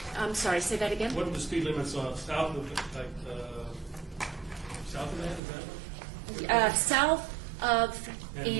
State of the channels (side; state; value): left; drops out; at 5.4 s